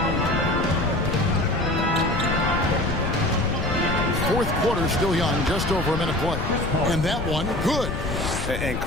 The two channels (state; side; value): noise; left; rumble, 3 dB below the sound